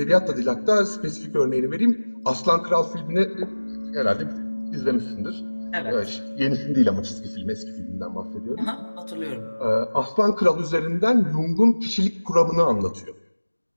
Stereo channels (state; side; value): inverted; both; correlation -1.00